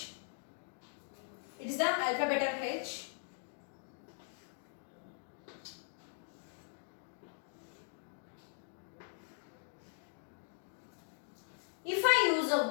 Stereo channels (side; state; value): right; silent; digital silence